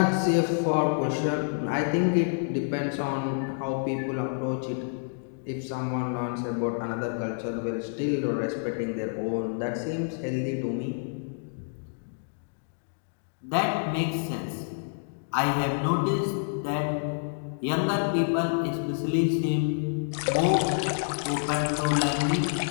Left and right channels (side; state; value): right; silent; digital silence